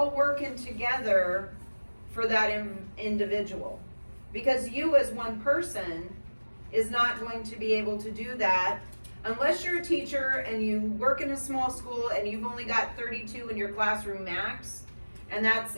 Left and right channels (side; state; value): both; inverted; correlation -1.00